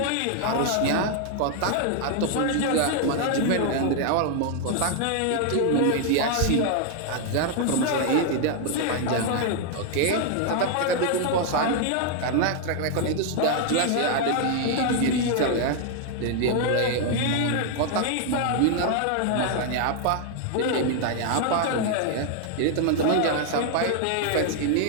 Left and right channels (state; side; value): different; both; correlation 0.00